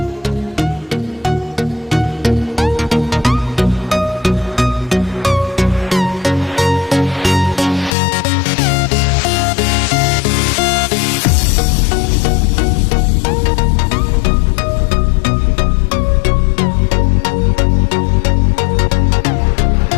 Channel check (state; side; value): drops out; right; at 8.0 s